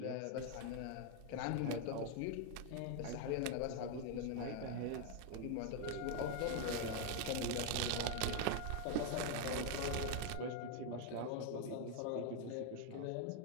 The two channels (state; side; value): different; both; correlation 0.01